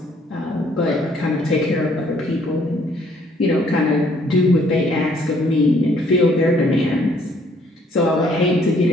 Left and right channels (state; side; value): normal; both; correlation 0.64